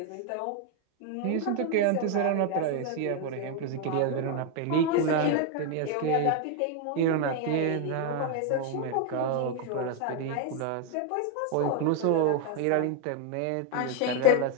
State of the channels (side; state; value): both; different; correlation 0.01